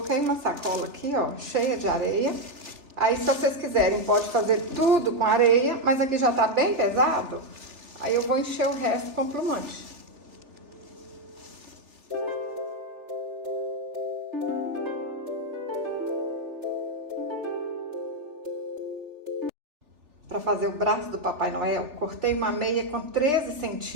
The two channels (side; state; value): left; late; 3.4 ms